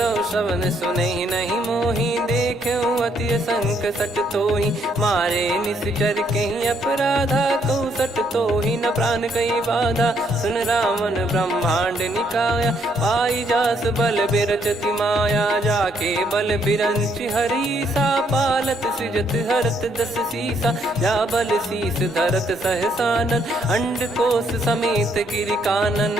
श्रवण सुने नहीं मोही देखे अति संक सट तोही मारे निश्चर कहीं अपराधा कहूँ सट तोही न प्राण कहीं बाधा सुन रावण ब्रह्मांड निकाया पाई जास बल बिरचति माया जाके बल बिरंच हरीसा पालत सृजत हरत दस सीसा जा बल शीस धरत सहसानन अंड कोश समेत गिरि कानन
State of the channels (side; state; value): both; normal; correlation 0.71